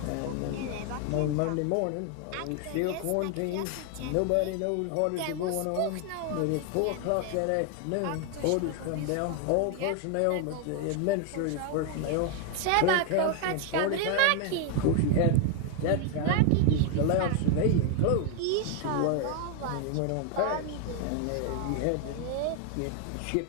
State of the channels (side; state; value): both; different; correlation 0.01